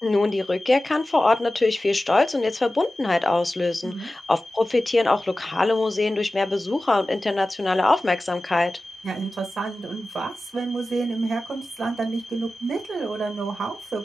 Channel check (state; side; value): normal; both; correlation 0.95